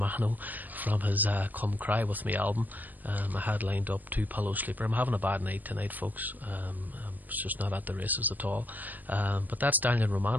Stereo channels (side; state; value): left; late; 0.085 ms